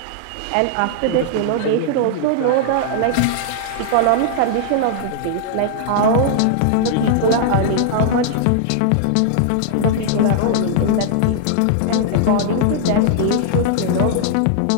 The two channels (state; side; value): different; both; correlation -0.01